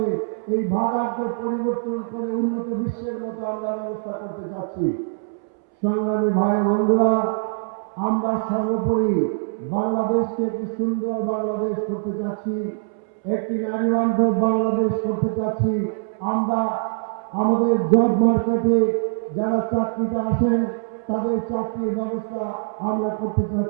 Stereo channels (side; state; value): left; silent; 63 dB below the other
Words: এই ভাগানকে পরিবর্তন করে উন্নত বিশ্বের মতো আমরা ব্যবস্থা করতে চাচ্ছি। সংগ্রামী ভাই বন্ধুরা, আমরা সর্বোপরি বাংলাদেশকে একটি সুন্দর বাংলাদেশ করতে চাচ্ছি, একটি নারী বান্ধব বাংলাদেশ করতে চাচ্ছি। আমরা আমাদের জব মার্কেটে যারা চাকরিতে আসেন তাদের চাকরির ব্যবস্থা আমরা করতে